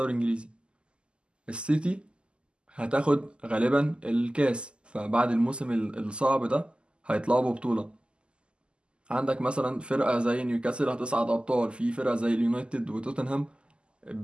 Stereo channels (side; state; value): left; late; 0.051 ms